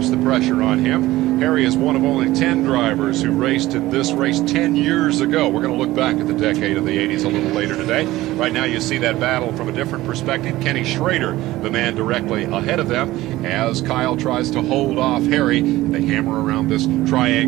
the pressure on him. Harry is one of only 10 drivers who raced in this race 10 years ago. We're going to look back at the decade of the 80s a little later today. Right now you see that battle from a different perspective. Kenny Schrader, the man directly ahead of them, as Kyle tries to hold off Harry. They hammer around this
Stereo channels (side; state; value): left; quieter; 17.1 dB